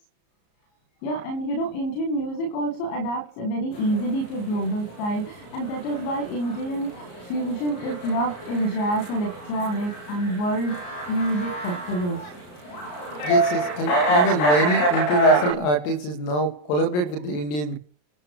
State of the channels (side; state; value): right; late; 34 ms